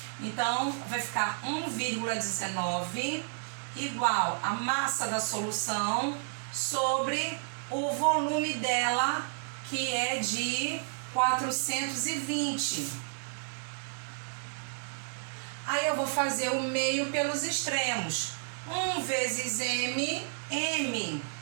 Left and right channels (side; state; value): left; silent; digital silence